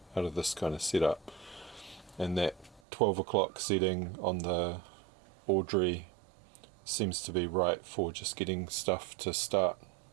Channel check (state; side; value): drops out; left; at 2.8 s